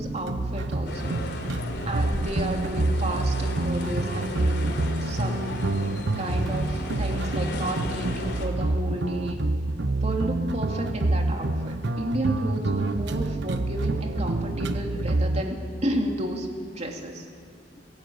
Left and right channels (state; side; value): normal; both; correlation 0.75